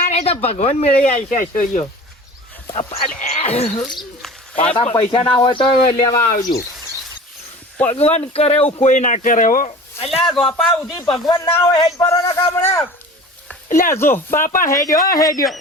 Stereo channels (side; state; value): both; normal; correlation 0.39